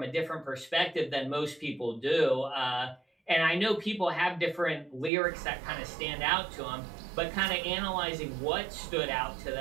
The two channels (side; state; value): left; drops out; at 5.1 s